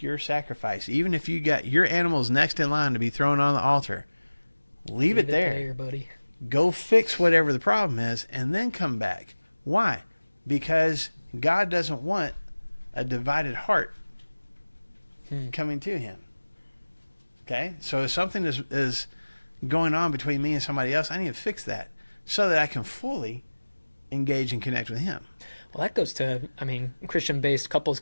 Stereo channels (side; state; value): both; inverted; correlation -1.00